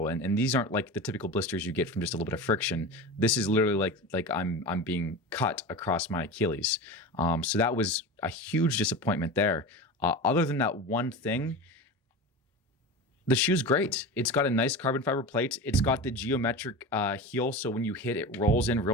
And these aren't like the typical blisters you get from just a little bit of friction. This is literally like I'm being cut across my Achilles. So that was a huge disappointment there. Other than that one thing, the shoe's great. It's got a nice carbon fiber plate. It's got the geometric heel, so when you hit, it rolls in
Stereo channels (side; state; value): both; normal; correlation 0.28